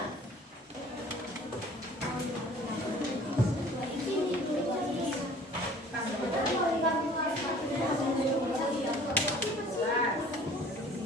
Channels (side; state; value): both; normal; correlation 0.50